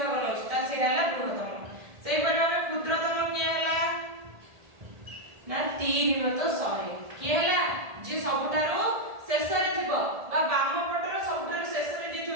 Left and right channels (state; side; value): late; left; 1.7 ms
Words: আছে তা সেটা হলা বৃহত্তম সেই পরিমাণে ক্ষুদ্রতম কি হলা না 3 বিভক্ত 100 କିଏ ହେଲା ଯେ ସବୁଠାରୁ ଶେଷରେ ଥିବ ବା ବାମ ପଟର ସବୁଠାରୁ ଶେଷରେ ଯିଏ